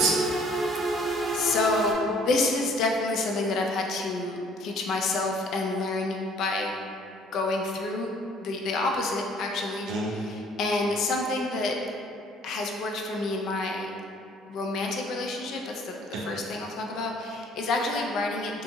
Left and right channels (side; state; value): both; normal; correlation 0.57